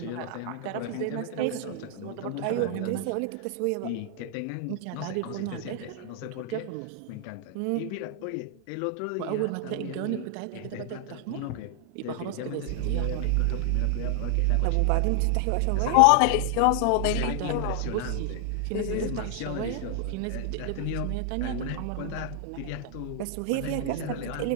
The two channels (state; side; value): different; both; correlation 0.00